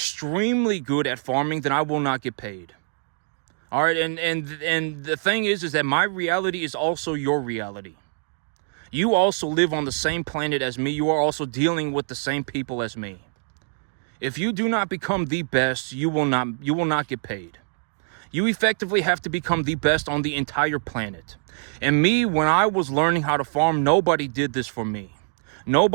good at farming, then I will not get paid. All right, and the thing is that my reality is also your reality. You also live on the same planet as me. You are also dealing with the same people as me. If you do not become the best, you will not get paid. You effectively have to become the best on the entire planet. And me, when I was learning how to farm, nobody did this for me.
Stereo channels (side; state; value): left; silent; digital silence